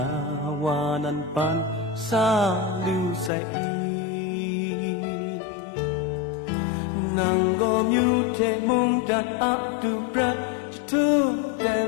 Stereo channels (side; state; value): right; drops out; at 3.3 s